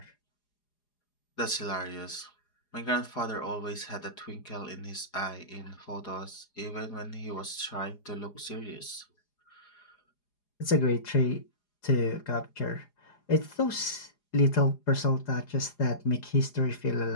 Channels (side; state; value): right; late; 4.9 ms